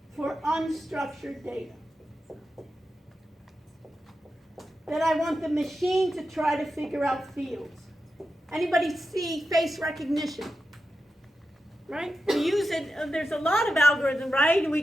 for unstructured data. That I want the machine to try to figure out fields. Anybody see face recognition? Right? We use it, there's a lot of algorithm, right? And we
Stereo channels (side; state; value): both; normal; correlation 0.90